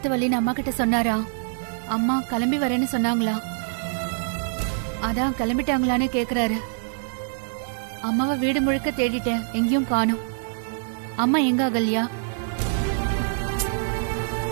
வலின்னு அம்மா கிட்ட சொன்னாரா? அம்மா கிளம்பி வரேன்னு சொன்னாங்களா? அதான் கிளம்பிட்டாங்களான்னு கேக்குறாரு. அம்மாவை வீடு முழுக்க தேடிட்டேன், எங்கேயும் காணோம். அம்மா எங்க அகல்யா?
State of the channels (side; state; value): left; silent; digital silence